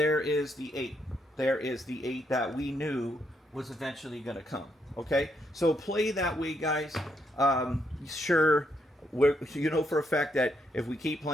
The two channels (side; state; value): both; normal; correlation 0.77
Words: is the 8. There is the 8 that we knew was eventually going to come. Okay? So play that way, guys. Sure, you know for a fact that if we keep